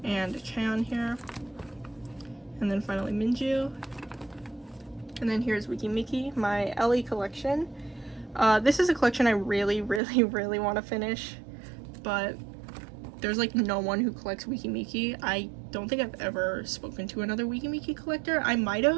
and Chan here. And then finally Minju. And then here's meki, my LE collection. This is a collection I really want to finish, but there's like no one who collects meki. I don't think I've ever spoken to another meki collector. I might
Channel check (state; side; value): drops out; left; at 10.0 s